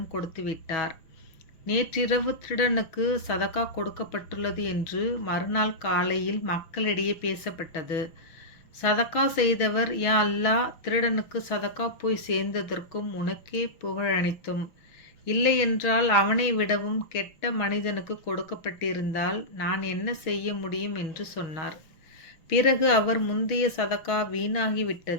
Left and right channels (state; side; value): late; right; 6.2 ms